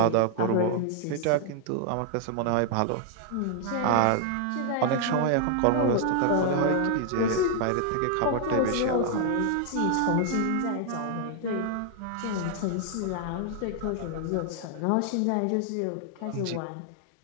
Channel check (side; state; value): both; different; correlation 0.00